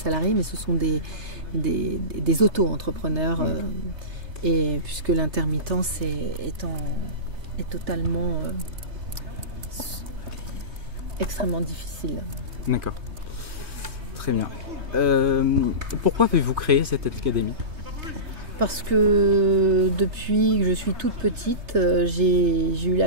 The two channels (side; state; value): left; late; 3.2 ms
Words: mais ce sont des auto-entrepreneurs, et puisque l'intermittence est totalement extrêmement difficile. D'accord. Très bien. Pourquoi avez-vous créé cette académie? Parce que depuis que je suis toute petite, j'ai eu